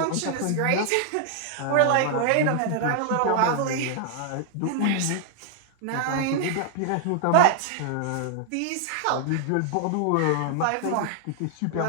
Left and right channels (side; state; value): both; different; correlation 0.00